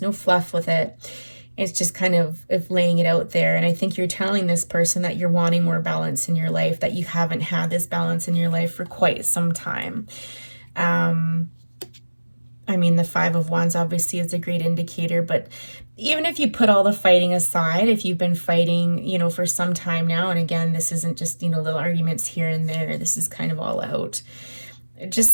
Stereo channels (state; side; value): inverted; both; correlation -1.00